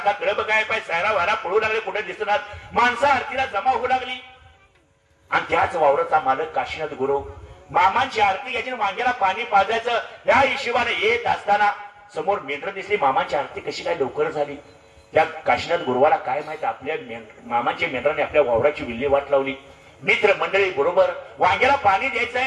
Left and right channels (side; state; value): both; identical; correlation 1.00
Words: कळप काय पाय सायरा वारा पळू लागले, कुठे दिसणार. माणसं आरतीला जमा होऊ लागली. आणि त्याच वावराचा मालक काशीनाथ गुरु मामांची आरती घ्यायची, वांग्याला पाणी पाजायचं या हिशोबाने येत असताना समोर मेंढर दिसली. मामांची आरती कशी काय लवकर झाली? त्या काशीनाथ गुरुवाला काय माहित, आपल्या मामांच्या मेंढराने आपल्या वावराची विल्हेवाट लावली. मित्र मंडळी बरोबर वांग्याला पाणी द्यायचं